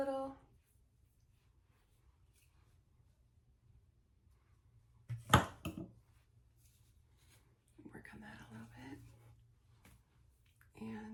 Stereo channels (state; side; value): identical; both; correlation 1.00